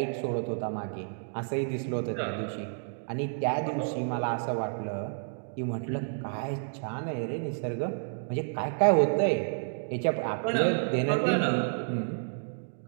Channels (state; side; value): silent; left; digital silence